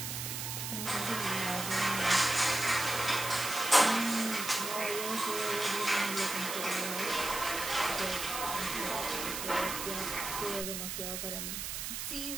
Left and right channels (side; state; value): right; noise; hiss, 4 dB below the sound